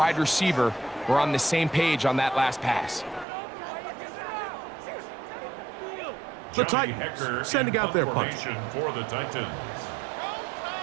receiver were on the same page on that last pass. The Titans sending out their punch. For the Titans.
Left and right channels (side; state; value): left; drops out; at 3.2 s